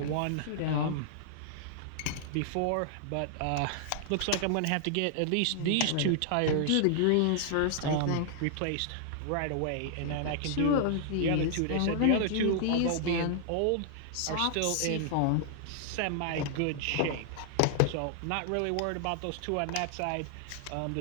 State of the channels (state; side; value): different; both; correlation -0.01